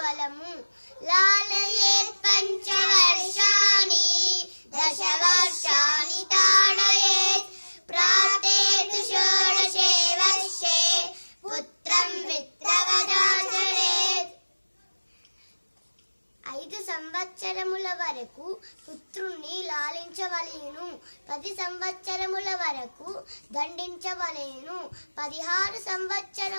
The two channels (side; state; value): both; inverted; correlation -1.00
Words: బలము. లాలయేత్ పంచవర్షాణి దశవర్షాణి తాడయేత్ ప్రాప్తేతు షోడశే వర్షే పుత్రం విత్రవదాచరేత్. 5 సంవత్సరముల వరకు పుత్రుణ్ణి లాలించవలెను. 10 సంవత్సరముల వరకు దండించవలెను. 16